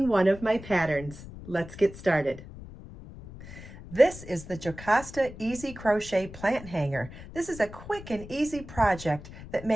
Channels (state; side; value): noise; left; rumble, 15 dB below the sound